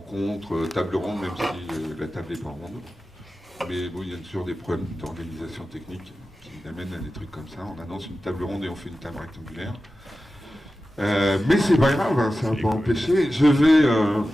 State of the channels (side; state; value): both; normal; correlation 0.94